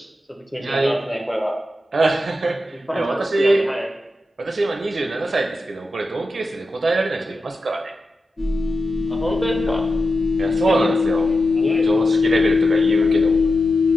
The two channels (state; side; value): normal; both; correlation 0.90